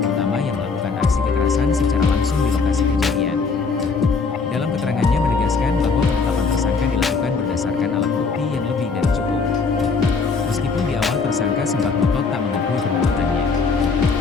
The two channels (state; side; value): quieter; right; 4.7 dB